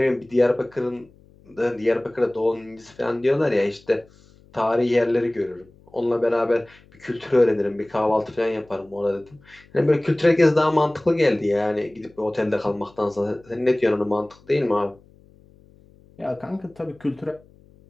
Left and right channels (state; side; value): noise; left; hum, 28 dB below the sound